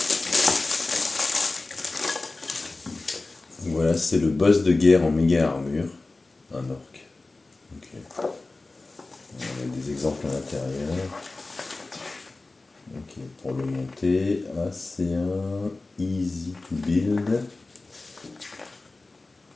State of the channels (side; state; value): right; quieter; 3.3 dB